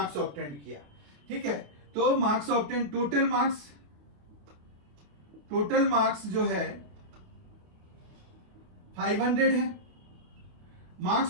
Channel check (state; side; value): late; left; 28 ms